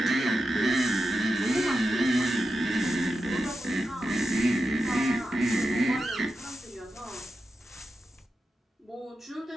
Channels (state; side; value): normal; both; correlation 0.89